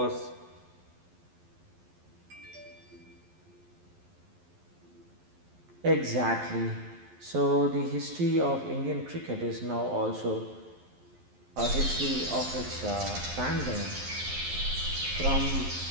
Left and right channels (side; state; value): left; late; 11 ms